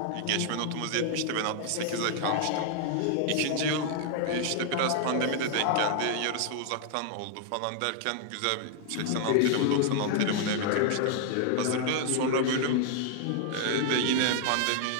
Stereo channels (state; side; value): different; both; correlation 0.00